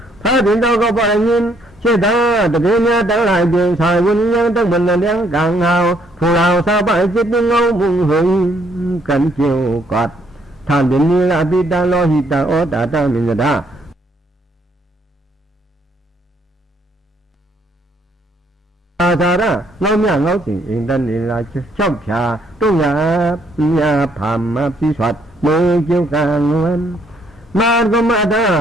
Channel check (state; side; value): normal; both; correlation 0.68